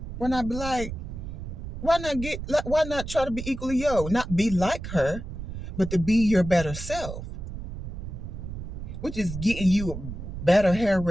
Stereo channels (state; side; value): noise; right; rumble, 8 dB below the sound